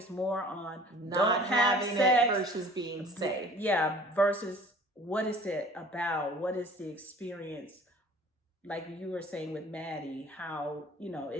more on not having it versus being safe. Yeah, versus what is it about? What is the experience? Like you were saying with Maddie, how,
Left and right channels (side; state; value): both; normal; correlation 0.48